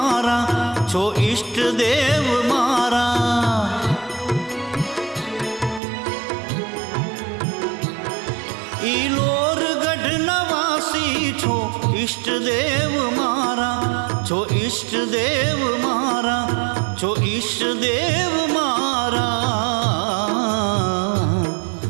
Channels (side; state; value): left; drops out; at 5.8 s